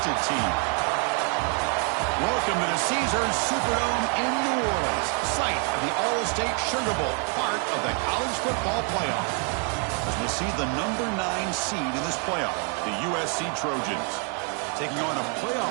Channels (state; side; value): quieter; left; 39.7 dB